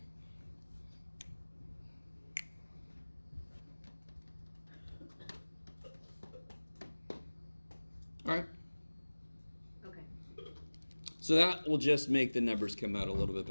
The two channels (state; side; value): inverted; both; correlation -1.00